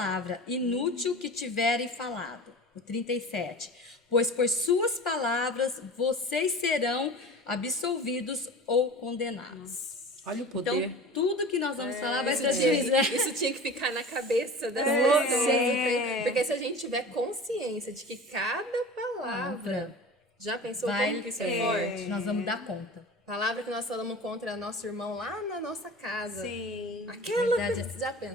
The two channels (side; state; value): both; normal; correlation 0.36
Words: inútil que tiverem falado. O 37. Pois por suas palavras vocês serão absolvidos ou condenados. Olha o poder. Então, tudo que nós vamos falar vai ser Isso tinha que ficar na cabeça das pessoas. Porque se a gente tiver consciência de que cada palavra... Já pensou como que isso é forte? Nós vamos dar conta. Palavra que nós falamos contra nosso irmão lá na nossa casa. Sim. Aquela Verdade. que já